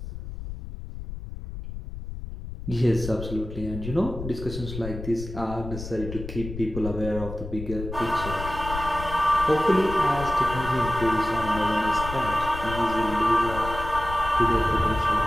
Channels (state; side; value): noise; left; rumble, 9 dB below the sound